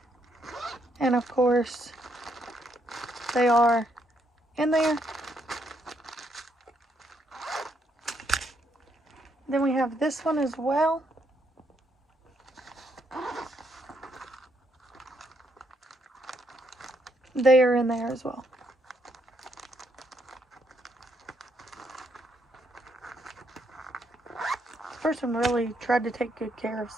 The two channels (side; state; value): both; normal; correlation 0.75